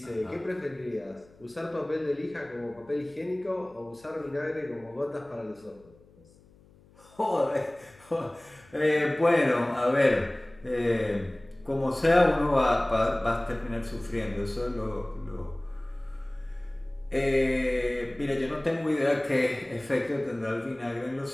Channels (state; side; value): noise; left; hum, 27 dB below the sound